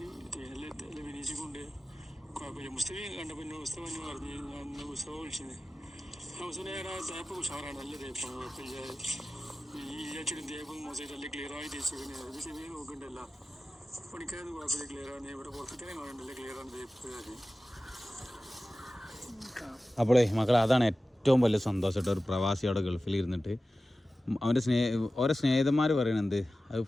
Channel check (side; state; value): both; normal; correlation 0.95